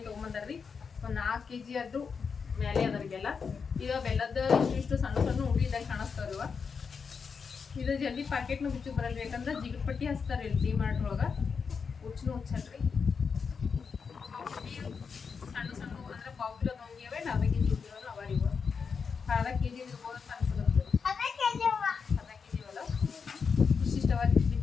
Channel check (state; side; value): quieter; right; 5.7 dB